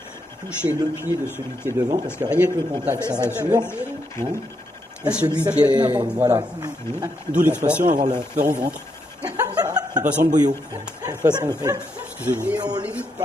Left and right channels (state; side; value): normal; both; correlation 0.80